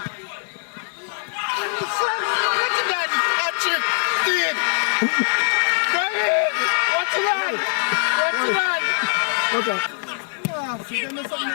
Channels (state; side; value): silent; right; digital silence